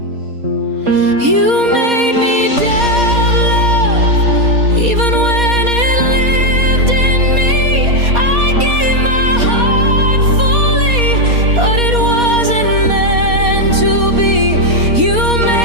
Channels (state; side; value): late; left; 4.2 ms